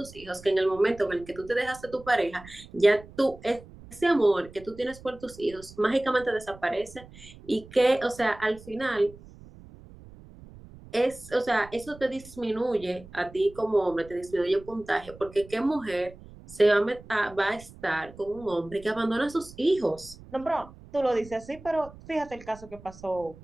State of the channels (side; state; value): right; noise; rumble, 19 dB below the sound